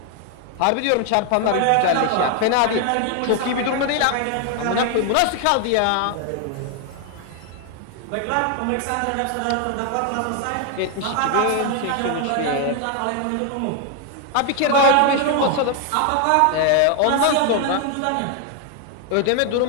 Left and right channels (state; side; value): different; both; correlation 0.00